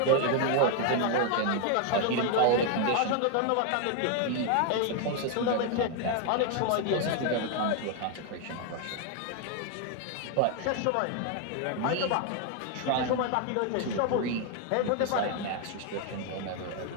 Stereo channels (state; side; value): different; both; correlation 0.01